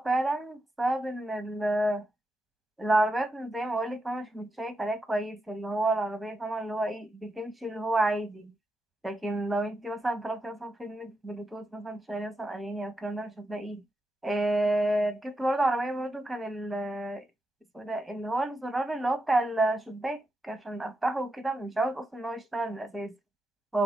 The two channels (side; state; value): both; normal; correlation 0.86